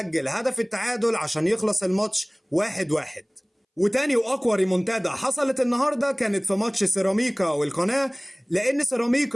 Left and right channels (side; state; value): both; identical; correlation 1.00